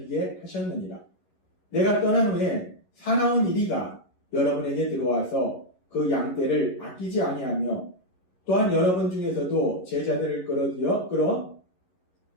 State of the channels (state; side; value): late; right; 11 ms